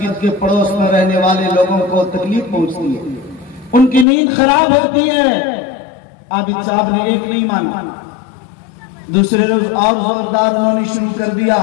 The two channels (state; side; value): drops out; right; at 4.0 s